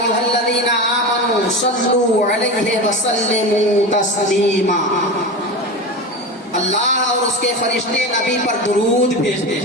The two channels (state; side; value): normal; both; correlation 0.25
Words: الذین آمنوا صلوا علیہ وسلموا تسلیما۔ اللہ اور اس کے فرشتے نبی پر درود بھیجتے